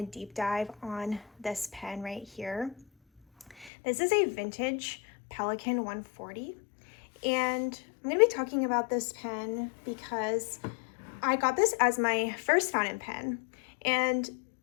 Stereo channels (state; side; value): drops out; right; at 3.7 s